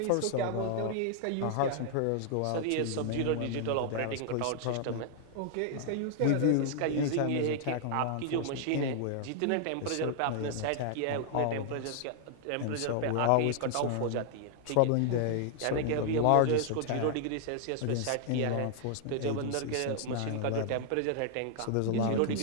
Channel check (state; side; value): different; both; correlation 0.00